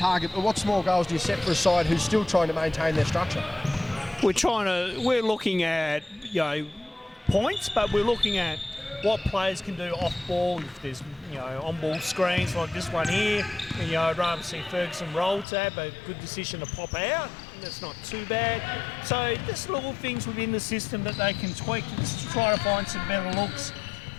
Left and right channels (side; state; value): right; drops out; at 15.5 s